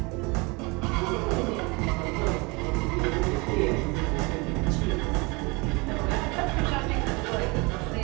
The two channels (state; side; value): quieter; left; 27.5 dB